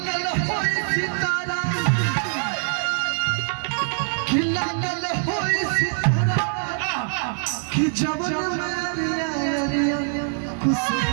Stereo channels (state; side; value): silent; left; 63 dB below the other